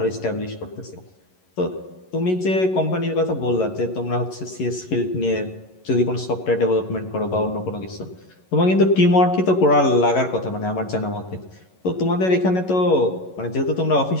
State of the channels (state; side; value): late; right; 11 ms